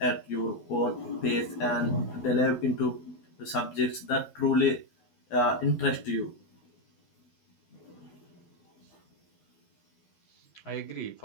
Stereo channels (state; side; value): late; right; 12 ms